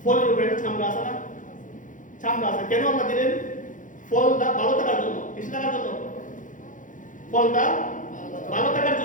ফলের উপরে চামড়া আছে না, চামড়া আছে। কেন আল্লাহ দিলেন? ফলটা ভালো থাকার জন্য। কিছু থাকার জন্য ফলটা ভালো থাকার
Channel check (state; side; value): late; right; 0.38 ms